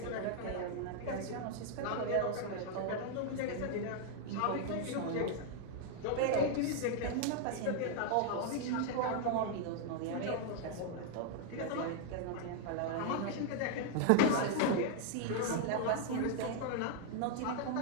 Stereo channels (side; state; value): both; different; correlation 0.00